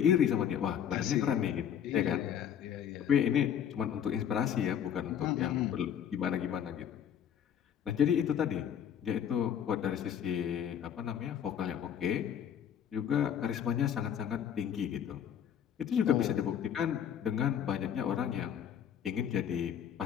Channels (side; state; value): right; quieter; 9.1 dB